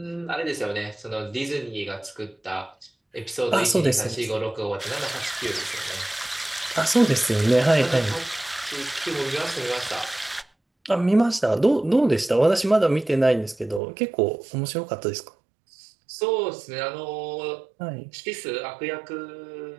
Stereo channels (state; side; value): drops out; left; at 13.8 s